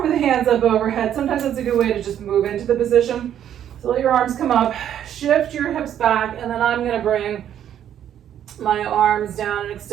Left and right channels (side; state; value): left; quieter; 10.2 dB